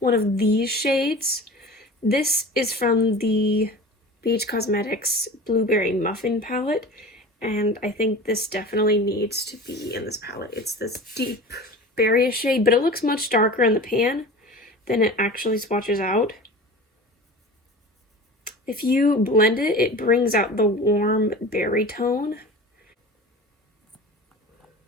one of these shades. This is from the BH Cosmetics Blueberry Muffin palette, and I think this definitely needs to be in this palette. It's this deep berry shade, but it looks much darker in the pan than it actually swatches out. If you blend it, it brings out the warm berry tone.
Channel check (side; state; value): both; normal; correlation 0.36